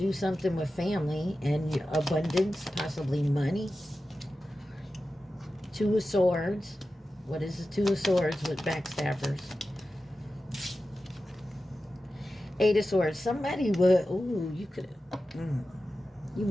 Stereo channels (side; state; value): both; normal; correlation 0.93